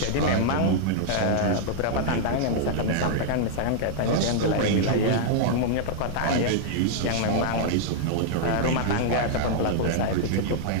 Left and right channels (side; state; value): both; different; correlation -0.01